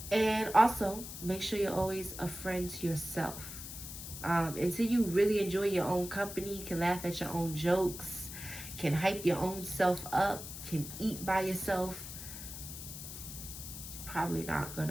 And also, make sure you're always a friend to yourself. Until you really enjoy your own company, can laugh at your own jokes, can hype your own self up, can eat by yourself, you're probably not going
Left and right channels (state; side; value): noise; left; hiss, 10 dB below the sound